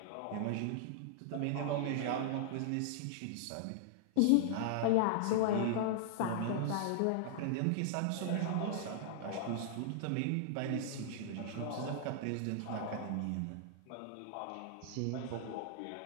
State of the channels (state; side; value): different; both; correlation -0.01